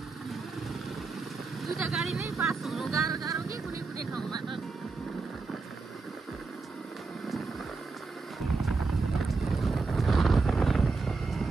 दुईटा गाडी नै पास हुनु गाह्रो गाह्रो कि कुनै कुनै ठाउँमा त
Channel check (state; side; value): quieter; left; 4.1 dB